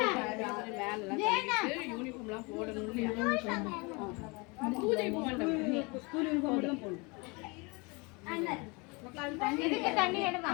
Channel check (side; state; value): right; quieter; 28.3 dB